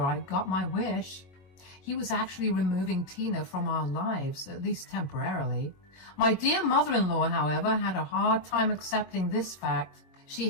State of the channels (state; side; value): late; right; 21 ms